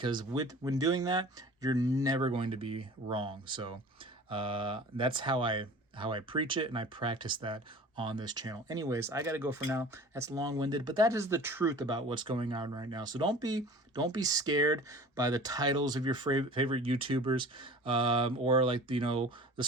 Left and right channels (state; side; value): normal; both; correlation 0.42